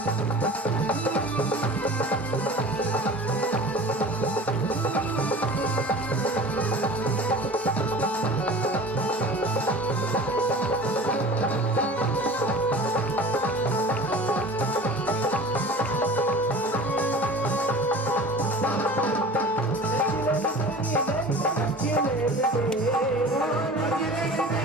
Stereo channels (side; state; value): both; normal; correlation 0.39